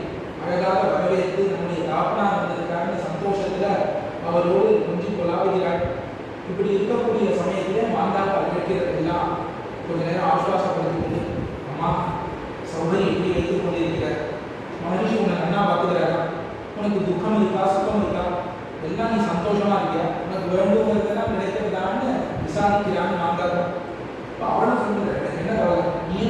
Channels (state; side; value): identical; both; correlation 1.00